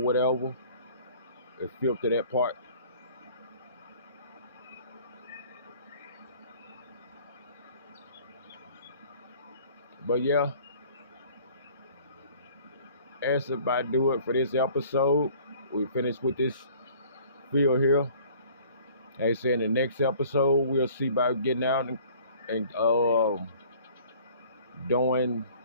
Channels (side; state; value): both; inverted; correlation -0.52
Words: whatever. It filter that part. But yeah, that's about do it for this episode. We finished with this field here. Like I said, in the next episode, we'll see about getting out and